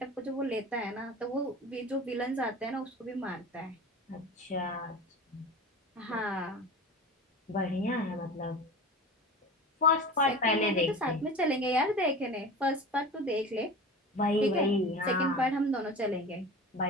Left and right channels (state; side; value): normal; both; correlation 0.34